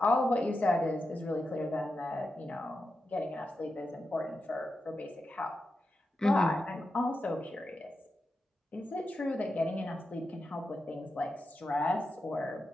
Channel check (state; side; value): normal; both; correlation 0.89